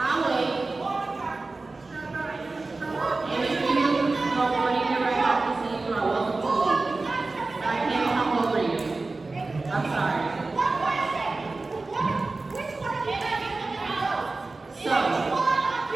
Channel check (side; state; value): left; quieter; 3.5 dB